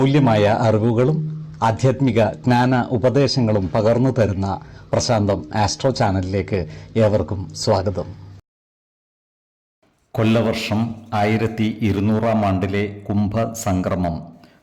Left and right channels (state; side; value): identical; both; correlation 1.00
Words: അറിവുകളും ആധ്യാത്മിക ജ്ഞാന ഉപദേശങ്ങളും പകർന്നു തരുന്ന പ്രശാന്തം ആസ്ട്രോ ചാനലിലേക്ക് ഏവർക്കും സ്വാഗതം. കൊല്ലവർഷം 1200 ആണ്ടിലെ കുംഭസംക്രമം